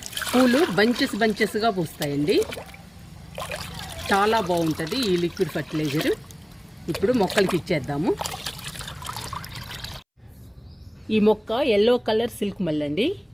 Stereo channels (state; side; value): identical; both; correlation 1.00